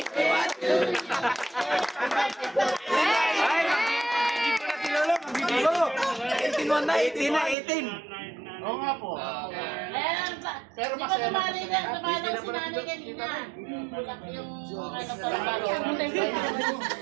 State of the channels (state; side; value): drops out; left; at 7.6 s